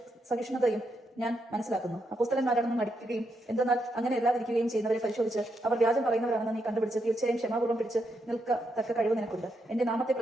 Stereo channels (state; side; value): normal; both; correlation 0.81